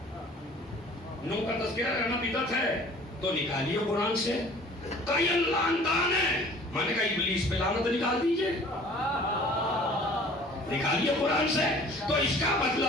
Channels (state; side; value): normal; both; correlation 0.49